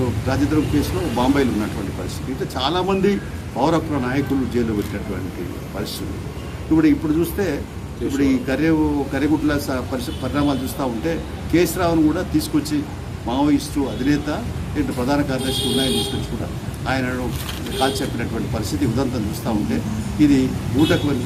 రాజద్రోహం కేసులో బాంబేలో ఉన్నటువంటి పరిస్థితి. ఇట్లా చాలామంది పౌర హక్కుల నాయకులు జైల్లో పెట్టినటువంటి పరిస్థితులు. ఇప్పుడు చూస్తే ఇప్పుడు ఈ కర్రెగుట్ల పరిణామాలు చూస్తూ ఉంటే కేసీరావును కూడా తీసుకొచ్చి మావోయిస్టు అధినేత ఇటు ప్రధాన కార్యదర్శి ఉన్నాయని తీసుకొచ్చి కూడా ఆయనను కాల్చి చెప్పినటువంటి పరిస్థితి ఉదంతం చూస్తూ ఉంటే ఇది ఊటకు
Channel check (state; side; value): identical; both; correlation 1.00